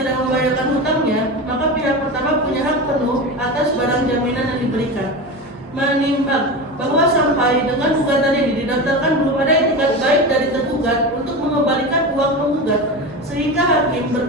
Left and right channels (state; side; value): normal; both; correlation 0.24